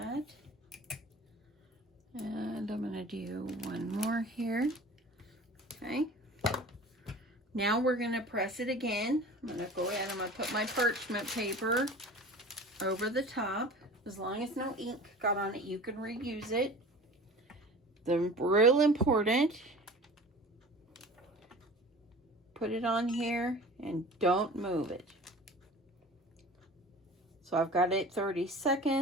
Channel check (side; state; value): both; normal; correlation 0.40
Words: And I'm going to do one more here. Okay. Now we're going to press it again. I'm going to go ahead and I'm going to put my parchment paper over the top. As long as no ink got on it, you can reuse it. The real important, put it on here and don't move it. So I've got it 30